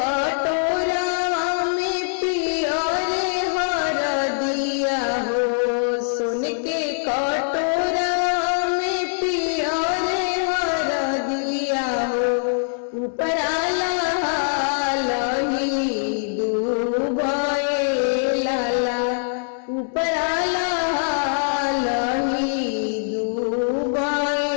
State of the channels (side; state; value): right; silent; 64 dB below the other